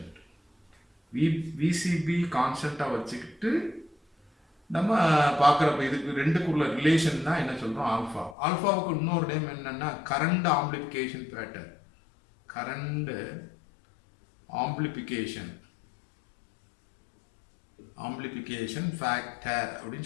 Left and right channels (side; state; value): right; drops out; at 8.3 s